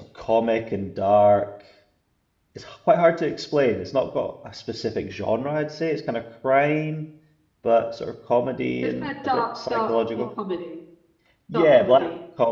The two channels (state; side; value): identical; both; correlation 1.00